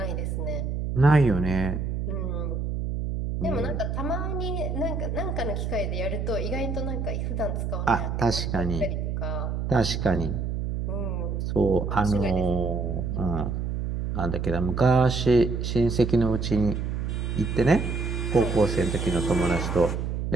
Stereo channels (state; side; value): noise; right; hum, 2 dB below the sound